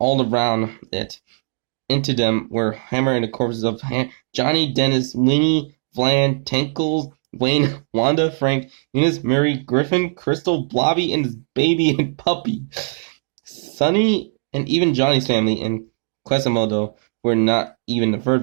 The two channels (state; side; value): silent; left; digital silence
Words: around it. Into them were hammering the corpses of Johnny, Dennis, Winnie, Vlan, Tinkles, Wayne, Wanda, Frank, Eunice, Mary, Griffin, Crystal, Blobby, and his baby and puppy. Sonny and even Johnny's family in Quasimodo were not even the